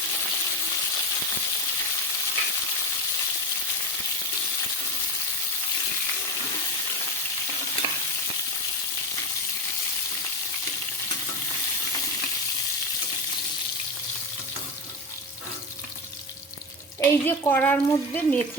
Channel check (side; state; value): both; normal; correlation 0.19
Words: এই যে কড়ার মধ্যে